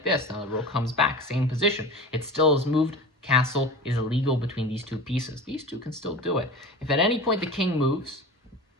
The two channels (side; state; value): both; normal; correlation 0.33